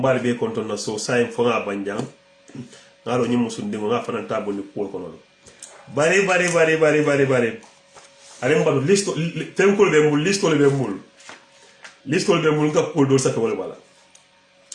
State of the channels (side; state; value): both; identical; correlation 1.00